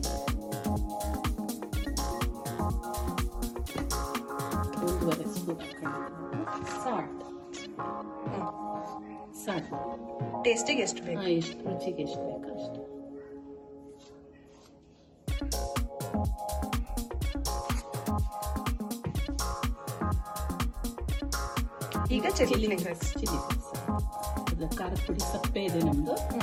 ಸಾಲ್ಟ್ ಟೇಸ್ಟಿಗೆ ಎಷ್ಟು ಬೇಕು? ಎಷ್ಟು ರುಚಿಗೆ ಎಷ್ಟು ಬೇಕು ಅಷ್ಟು. ಈಗ ಚಿಲ್ಲಿ ಖಾರದ ಪುಡಿ ಸಪ್ಪೆ ಇದೆ ನಮ್ದು.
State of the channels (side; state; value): both; identical; correlation 1.00